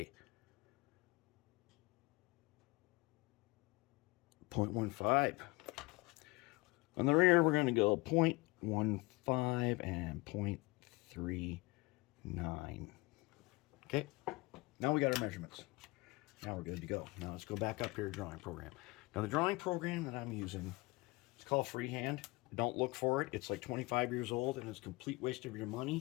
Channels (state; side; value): quieter; right; 23.5 dB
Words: 0.15. On the rear, we're going to go 0.15 and 0.39. Okay, now we got our measurements. Now we're good to go. Now let's go back up here to drawing program. Now the drawing program that I'm using, it's called Freehand. Don't look for it. It's like 25 years old and it's a complete waste of your